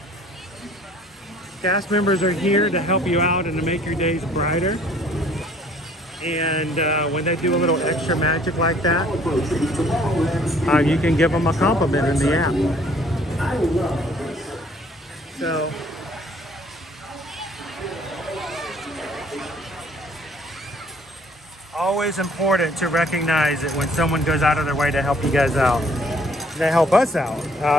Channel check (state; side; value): normal; both; correlation 0.58